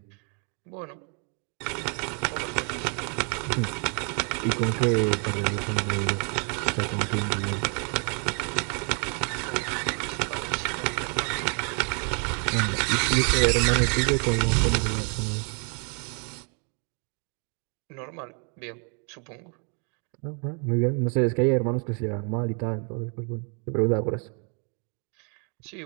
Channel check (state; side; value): quieter; left; 39.0 dB